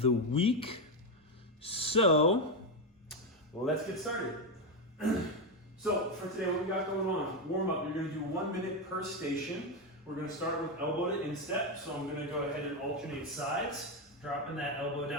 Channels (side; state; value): both; normal; correlation 0.08